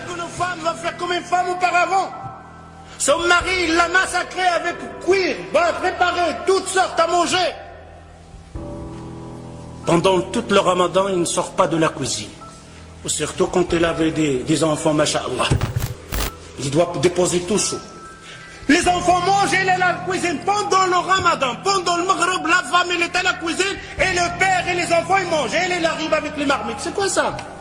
femme va faire comme une femme auparavant. Son mari, il l'a massacré avec cuir, préparé, toutes sortes à manger. Pendant tout le ramadan, il ne sort pas de la cuisine. Surtout quand il avait des enfants, masha'Allah. Il doit déposer tout chaud. Les enfants mangent, il est à la cuisine. Pendant le ramadan, pendant le maghreb, la femme, elle est à la cuisine, et le père et les enfants, ils mangent. Et il arrive avec les marmites. C'est quoi ça?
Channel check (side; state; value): both; identical; correlation 1.00